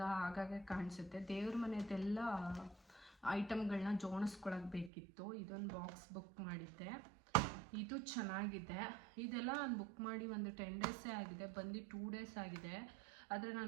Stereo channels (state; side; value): drops out; left; at 4.9 s